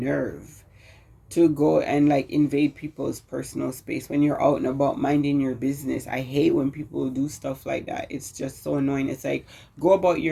to go and like invade people's personal space when you're out and about minding your business. I hate when people do stuff like that. It's just so annoying. It's like, go about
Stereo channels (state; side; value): identical; both; correlation 1.00